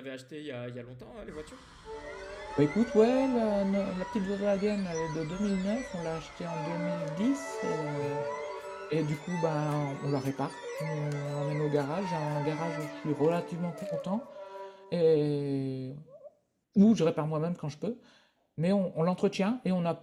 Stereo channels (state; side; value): identical; both; correlation 1.00